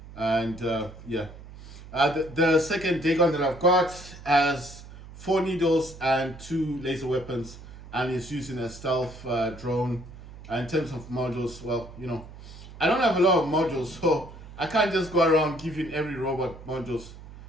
And yeah. The second Dagon that I've got has 4 needles and 2 laser weapons, and it's using a stealth drone. And in terms of modules, well, I don't have a lot of modules, so I can't just go around giving every robot modules.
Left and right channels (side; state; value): right; noise; hum, 16 dB below the sound